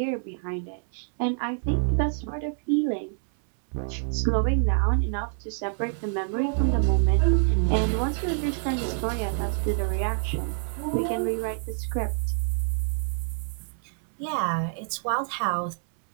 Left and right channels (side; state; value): left; silent; 60 dB below the other